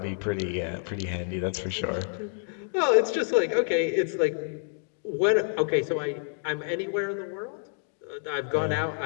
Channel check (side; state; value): right; silent; 59 dB below the other